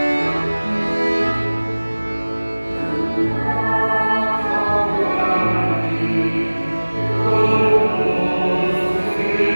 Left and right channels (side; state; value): both; inverted; correlation -1.00